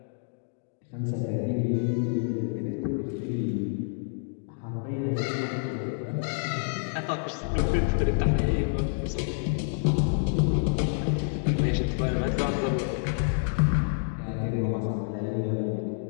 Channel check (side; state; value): right; silent; digital silence